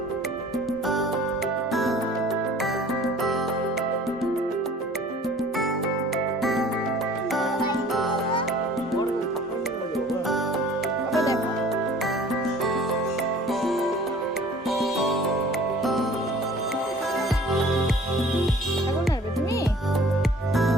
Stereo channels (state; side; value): normal; both; correlation 0.49